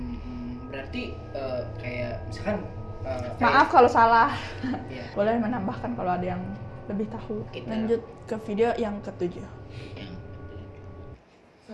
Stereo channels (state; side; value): identical; both; correlation 1.00